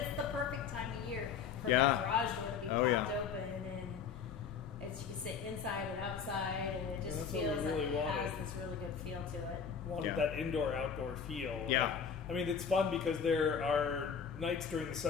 the perfect time of year for that garage door to be popped open, and It's you can sit inside and outside, and it just That's what we feels like really it wanted. has this really good feel to it. Wanted Yeah. that indoor-outdoor feel. Yeah. I mean, it's fun because there are nights during the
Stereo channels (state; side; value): quieter; right; 6.6 dB